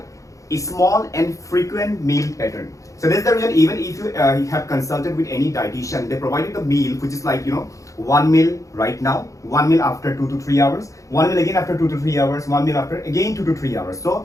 a small and frequent meal pattern. So that's the reason, even if you have consulted with any dietitian, they provide you the meal, which is like, one meal right now, one meal after 2 to 3 hours, one meal again after 2 to 3 hours, one meal after again 2 to 3 hours.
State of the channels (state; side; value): late; right; 0.16 ms